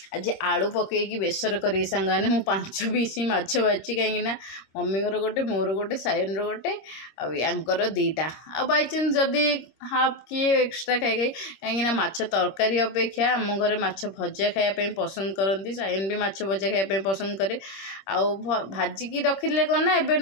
आज आलू पकईकी बेसर करी सांगने मु 5 पीस माछ बाची कहीं मम्मी गोटे मोर गोटे सायन गोटे आंकर 2टा आ बाई चांस जदि हाफ किए एक्सट्रा खाई कहीं माछ तरकारी अपेक्षा आम घरे माछ भजा खायापी पसंद करती सायन भी माछ भजा खायापी पसंद करे आउ भाजिकी रखिले कौन ना एबे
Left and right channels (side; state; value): right; late; 26 ms